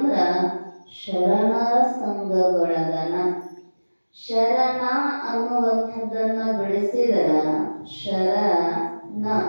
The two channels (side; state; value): both; inverted; correlation -1.00